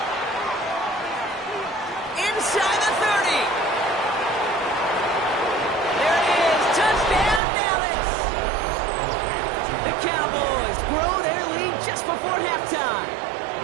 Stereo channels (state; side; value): drops out; left; at 7.4 s